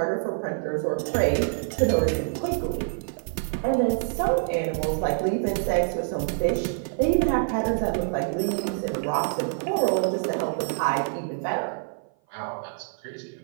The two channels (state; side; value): silent; left; 56 dB below the other